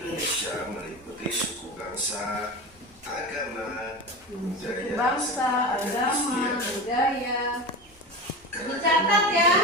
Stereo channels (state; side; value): normal; both; correlation 0.26